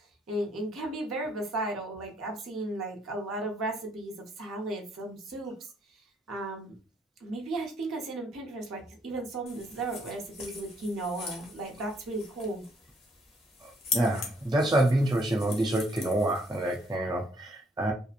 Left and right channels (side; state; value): both; normal; correlation 0.68